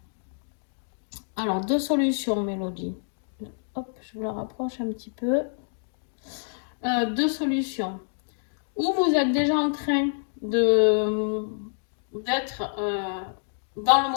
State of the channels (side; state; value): right; silent; digital silence